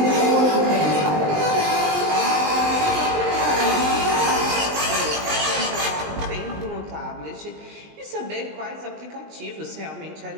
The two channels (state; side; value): late; left; 20 ms